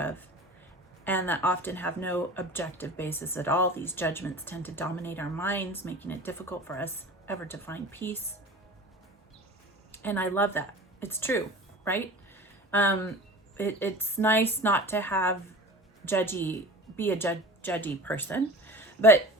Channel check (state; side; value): normal; both; correlation 0.38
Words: and that often have no objective basis at all. These judgments tend to dominate our minds, making it difficult for us ever to find peace. And I love that. It's true, right? It's nice not to have be a judgy person, but